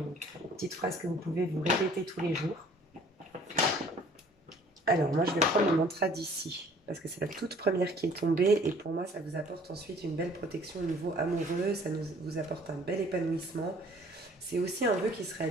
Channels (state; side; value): normal; both; correlation 0.54